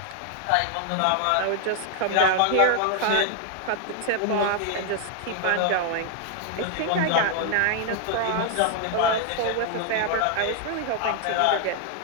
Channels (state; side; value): different; both; correlation 0.00